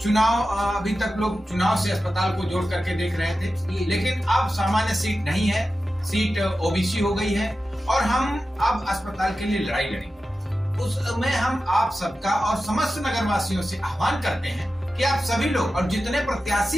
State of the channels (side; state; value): both; normal; correlation 0.93